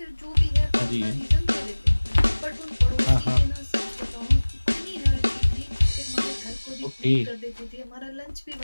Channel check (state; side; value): inverted; both; correlation -1.00